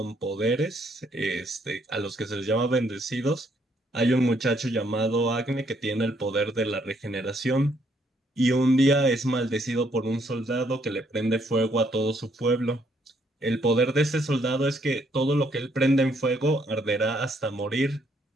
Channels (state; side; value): normal; both; correlation 0.70